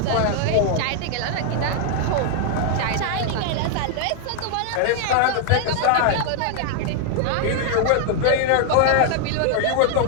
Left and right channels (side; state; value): both; different; correlation 0.00